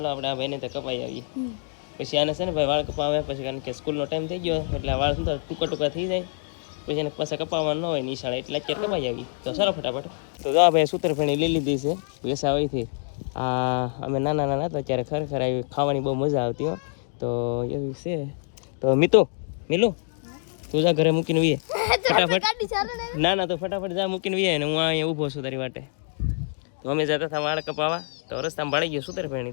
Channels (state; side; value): silent; right; 61 dB below the other